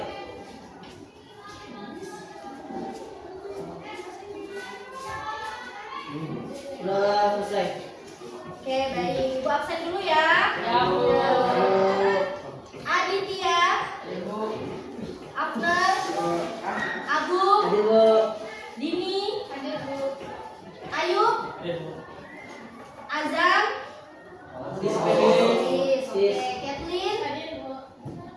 Udah selesai. Oke, baik. Ibu absen dulu ya. Ya, Bu. Aditya, Ibu. Abner, Abu, Hadir, Bu. Dini, Ayub, Azam, Sis, Oke, Kathleen,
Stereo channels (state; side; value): identical; both; correlation 1.00